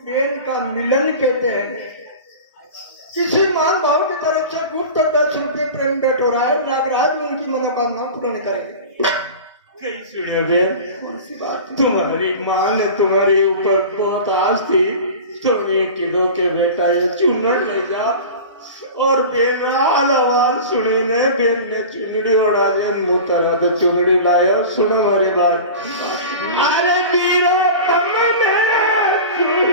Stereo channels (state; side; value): inverted; both; correlation -0.34